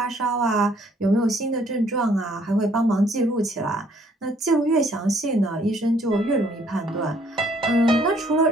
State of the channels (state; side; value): normal; both; correlation 0.63